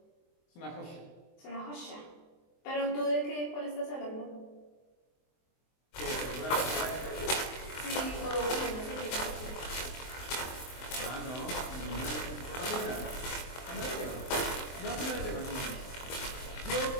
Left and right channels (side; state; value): right; late; 23 ms